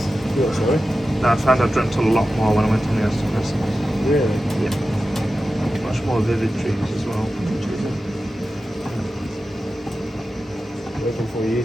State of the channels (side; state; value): both; normal; correlation 0.93